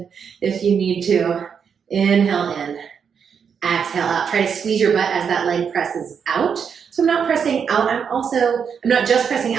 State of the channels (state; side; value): quieter; left; 6.9 dB